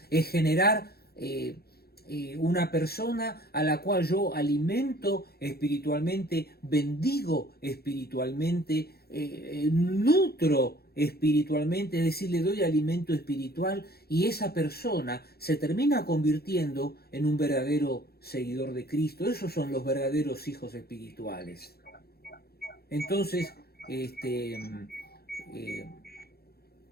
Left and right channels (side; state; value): right; late; 0.46 ms